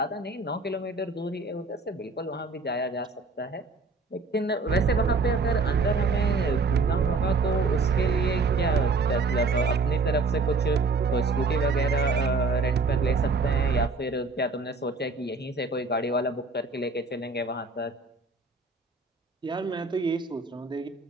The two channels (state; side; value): quieter; left; 3.8 dB